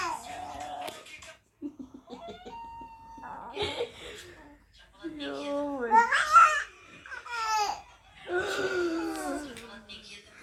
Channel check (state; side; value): identical; both; correlation 1.00